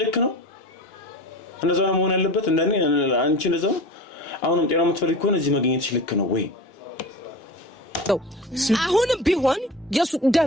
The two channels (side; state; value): both; normal; correlation 0.32